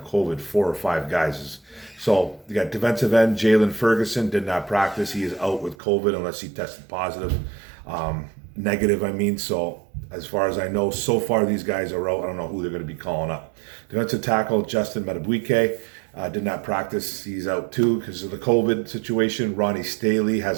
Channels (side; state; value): left; drops out; at 5.8 s